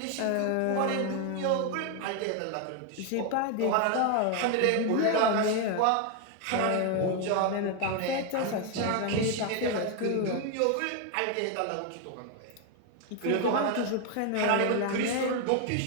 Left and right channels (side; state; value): both; different; correlation 0.01